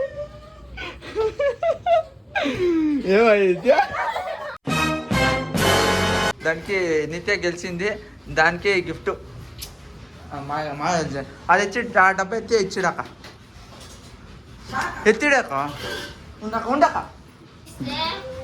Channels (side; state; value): both; identical; correlation 1.00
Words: ఏమైంది దానికి నిత్య గెలిచింది. దానికి గిఫ్ట్ అది ఇచ్చి ఆ డబ్బా ఎత్తి ఇచ్చిడాక ఎత్తిడాక ఉండక ఉండక